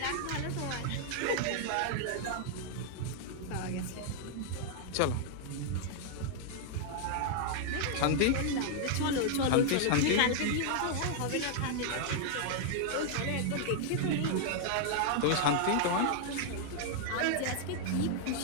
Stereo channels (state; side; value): different; both; correlation 0.00